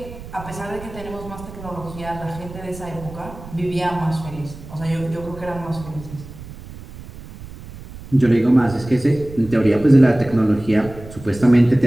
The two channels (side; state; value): right; noise; rumble, 15 dB below the sound